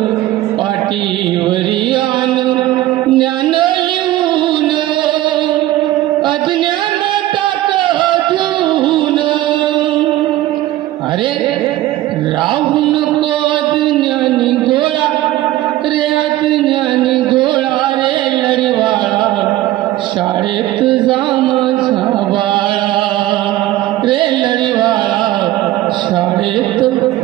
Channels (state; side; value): quieter; left; 15.3 dB